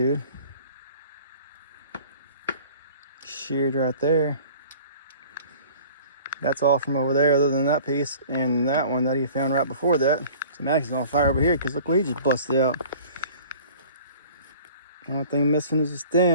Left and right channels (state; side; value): inverted; both; correlation -0.47